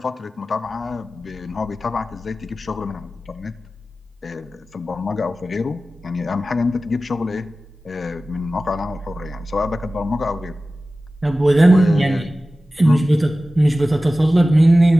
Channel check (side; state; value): both; normal; correlation 0.95